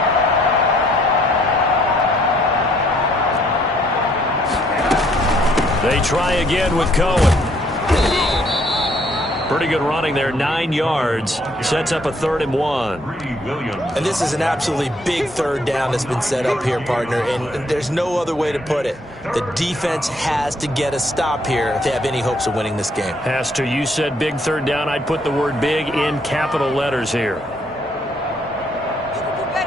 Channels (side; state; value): both; normal; correlation 0.66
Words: They try again with Cohen. Pretty good running there, 9 yards. Sets up a 3rd and 1. And this is an absolutely big 3rd down that's been set up here, partner, and there's no other way to put it. The defense has to get a stop here if they have any hopes of winning this game. Has to. You said big 3rd down. I'd put the word big in capital letters here.